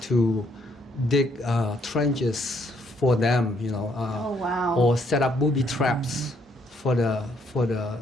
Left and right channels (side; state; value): both; normal; correlation 0.70